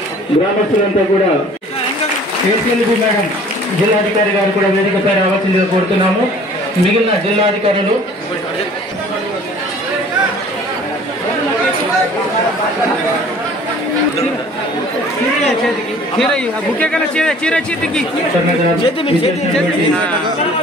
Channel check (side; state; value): both; normal; correlation 0.50